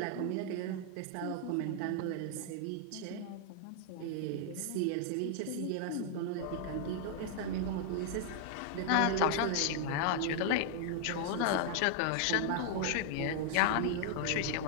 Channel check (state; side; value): different; both; correlation 0.00